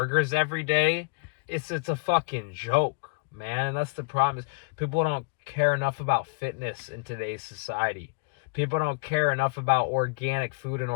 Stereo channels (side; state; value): right; quieter; 33.5 dB